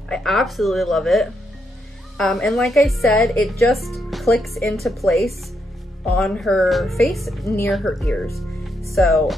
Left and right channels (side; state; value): both; normal; correlation 0.79